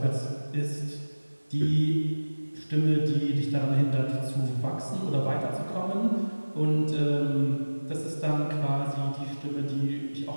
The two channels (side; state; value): both; inverted; correlation -1.00